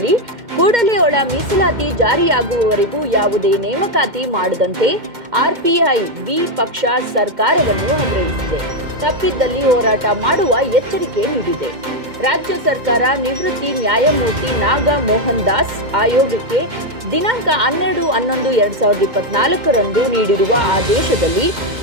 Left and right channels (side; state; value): left; late; 2.1 ms